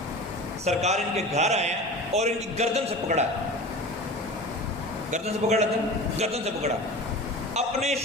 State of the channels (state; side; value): normal; both; correlation 0.34